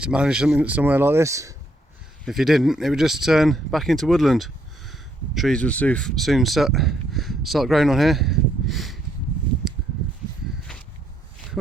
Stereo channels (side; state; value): both; normal; correlation 0.72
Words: to manage something somewhere like this, if you didn't, it would just turn back into woodland. Trees would soon start growing on here.